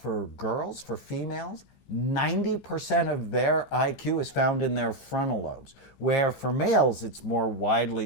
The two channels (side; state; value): right; late; 15 ms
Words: for girls, for females, 90% of their IQ is found in their frontal lobes, where for males it's more widely